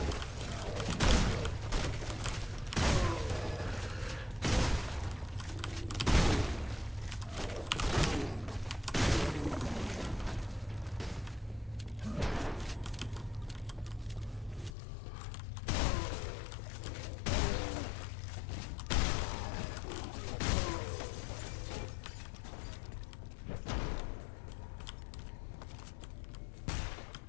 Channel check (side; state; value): right; drops out; at 14.7 s